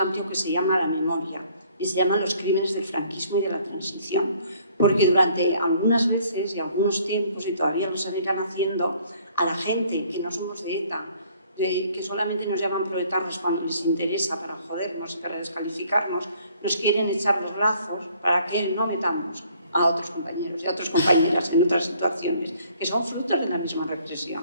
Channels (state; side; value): inverted; both; correlation -0.60